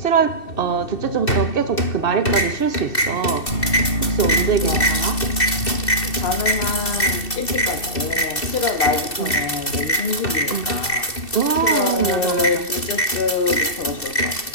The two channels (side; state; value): right; late; 2.7 ms